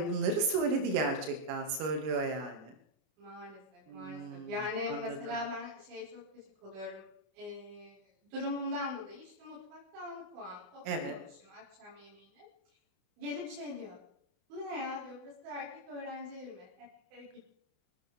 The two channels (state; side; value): late; left; 32 ms